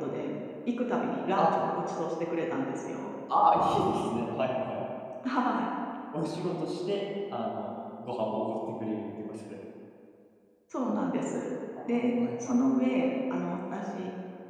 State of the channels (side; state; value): both; identical; correlation 1.00